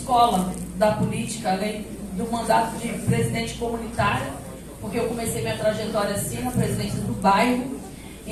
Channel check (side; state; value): both; identical; correlation 1.00